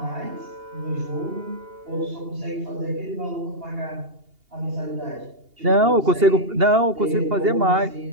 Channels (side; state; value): left; late; 2.8 ms